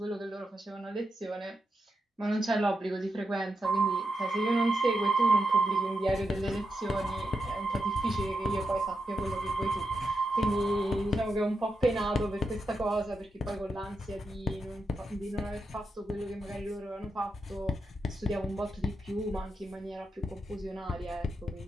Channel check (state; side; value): normal; both; correlation 0.86